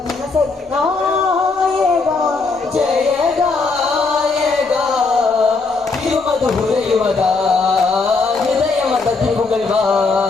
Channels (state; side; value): quieter; right; 4.1 dB